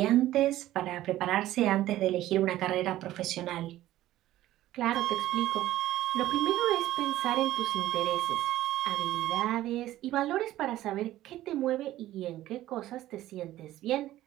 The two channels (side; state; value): left; quieter; 14.6 dB